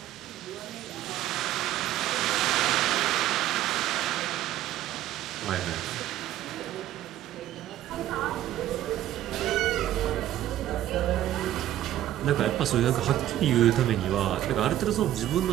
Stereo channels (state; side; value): quieter; left; 13.0 dB